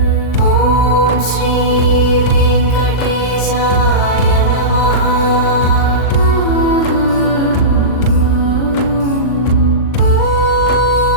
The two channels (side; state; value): right; late; 39 ms